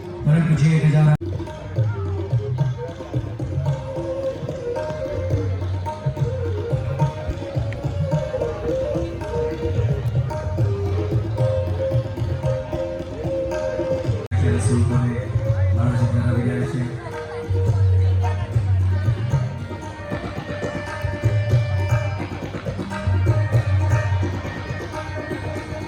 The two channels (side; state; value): both; identical; correlation 1.00